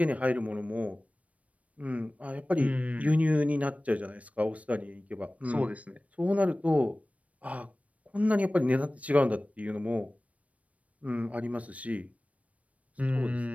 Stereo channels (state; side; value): late; left; 0.066 ms